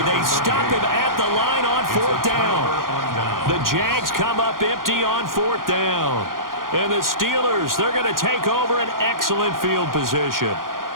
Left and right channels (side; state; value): left; late; 0.91 ms